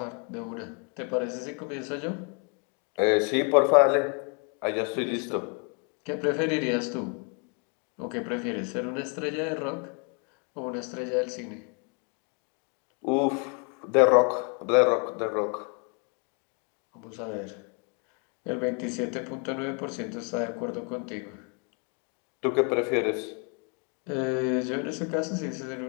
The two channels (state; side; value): quieter; right; 36.3 dB